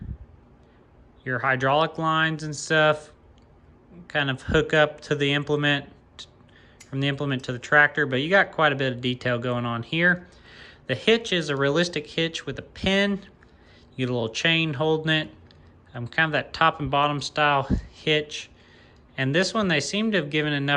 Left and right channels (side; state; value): both; identical; correlation 1.00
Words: your hydraulic lines and stuff kind of hook up to the implement, from the implement to the tractor, but you got quite a bit of detail going on here. The hitch is a realistic hitch with a pin. You get a little chain holding it. Kind of that top and bottom style hitch. And this one, they seem to have given